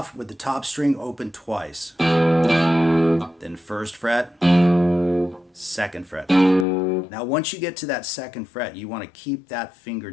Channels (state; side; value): drops out; right; at 6.7 s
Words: with the top string open twice. Then first fret, second fret. Now once you get to that second fret, you want to keep that finger